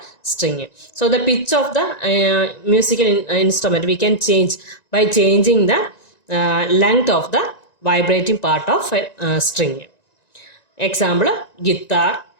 string. So the pitch of the musical instrument we can change by changing the length of the vibrating part of a string. Example, guitar,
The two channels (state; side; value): late; right; 1.9 ms